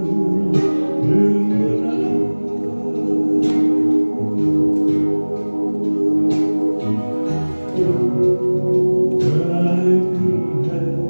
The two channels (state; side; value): inverted; both; correlation -1.00